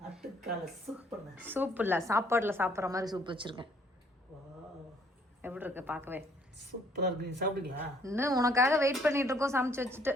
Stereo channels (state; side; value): normal; both; correlation 0.64